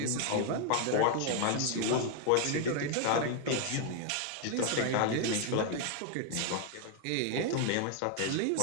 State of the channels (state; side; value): different; both; correlation 0.00